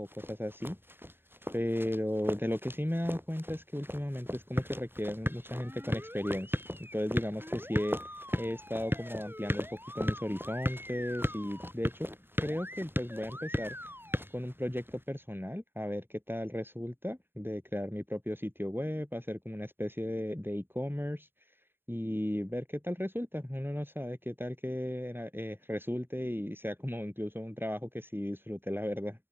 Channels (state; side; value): late; left; 0.11 ms